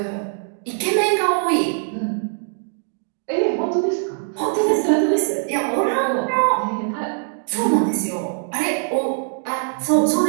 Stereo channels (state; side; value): silent; left; digital silence